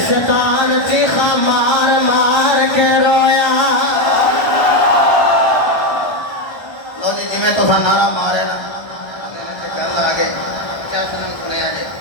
شیطان چیخا مار مار کے رویا لو جی جی میں تو سا نعرہ مارے نا گل آگے کیا سنم سنے آجے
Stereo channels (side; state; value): right; late; 1.3 ms